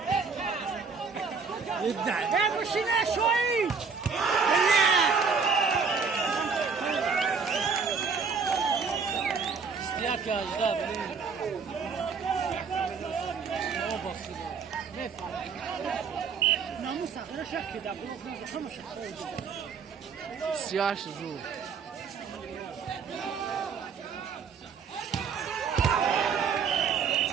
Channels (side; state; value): left; quieter; 5.5 dB